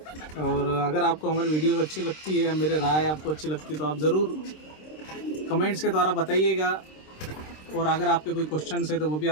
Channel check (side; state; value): right; late; 26 ms